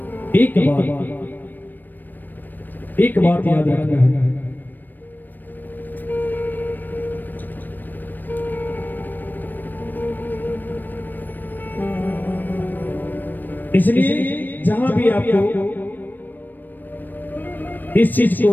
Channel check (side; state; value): right; late; 0.090 ms